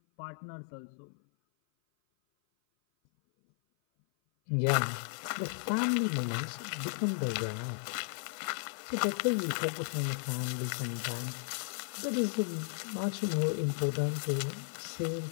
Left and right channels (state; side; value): silent; right; 55 dB below the other